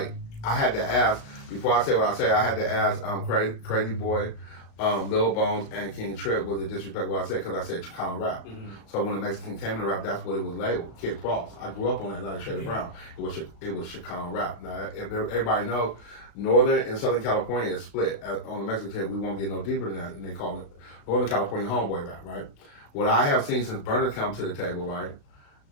I had to ask before I say what I say. I had to ask Crazy Boy, Lil Bones, and King Trip was it disrespectful what I said because I said Chicano rap. Mm-hmm. So when the Mexican came into rap, that's what it was labeled. Kid Frost. I grew up on that like Shady Brown. It was Chicano rap. Now everybody knows Northern and Southern California is split. On the Mexican side, we won't get no deeper than that, and they call it Northern California homeboy rap, right? What I have seen since Burner come to the table, right?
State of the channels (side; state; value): right; late; 35 ms